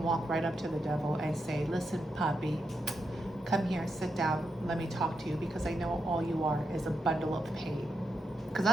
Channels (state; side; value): normal; both; correlation 0.84